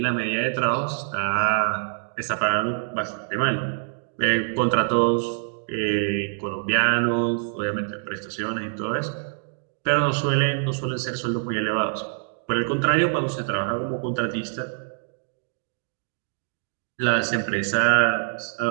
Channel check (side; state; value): left; silent; digital silence